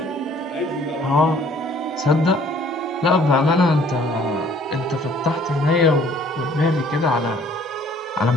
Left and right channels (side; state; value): both; normal; correlation 0.57